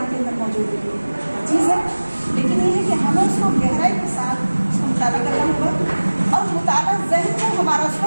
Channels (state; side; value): inverted; both; correlation -1.00